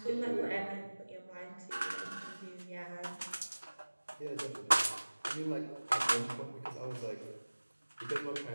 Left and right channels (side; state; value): both; inverted; correlation -1.00